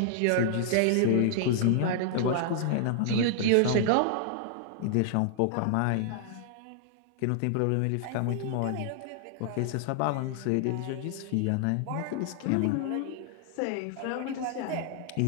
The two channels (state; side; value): different; both; correlation -0.01